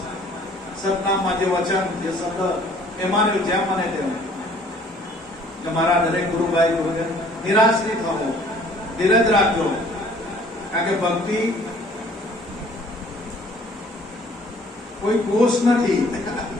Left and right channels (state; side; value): normal; both; correlation 0.56